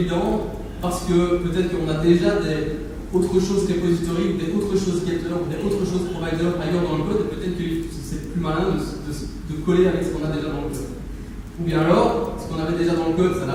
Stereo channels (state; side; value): identical; both; correlation 1.00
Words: parce que peut-être qu'on a déjà des autre chose repository, ou des autres choses getter, ou des autres choses provider ailleurs dans le code, et peut-être que c'est plus malin de coller avec ce qu'on a déjà dans le code. Ou bien alors, ce qu'on avait déjà dans le code, ça